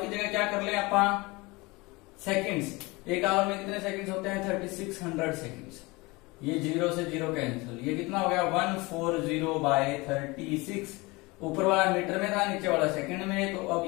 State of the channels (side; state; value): right; quieter; 24.0 dB